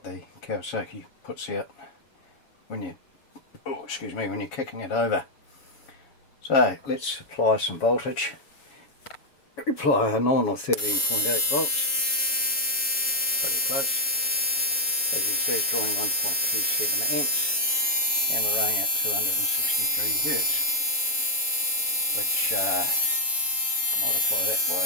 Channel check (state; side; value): late; right; 7.1 ms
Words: the Kawasaki puts out when you, when you're kicking it over. So let's apply some voltage. Apply a nominal 13.8 volts, pretty close. As you can see, it's drawing 1.27 amps, and we're running at 263 hertz, which multiply that